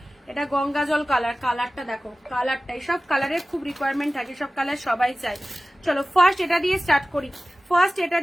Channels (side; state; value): both; normal; correlation 0.96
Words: এটা গঙ্গা জল কালার, কালারটা দেখো, কালারটা এইসব কালারের খুব রিকোয়ারমেন্ট থাকে, সব কালার সবাই চায়। চলো ফার্স্ট এটা দিয়ে স্টার্ট করি, ফার্স্ট এটা